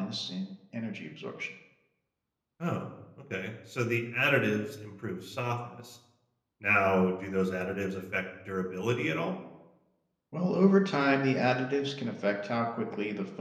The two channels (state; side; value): identical; both; correlation 1.00